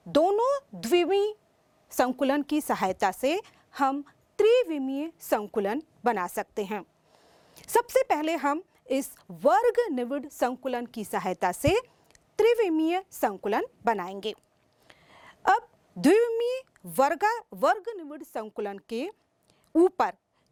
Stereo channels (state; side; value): identical; both; correlation 1.00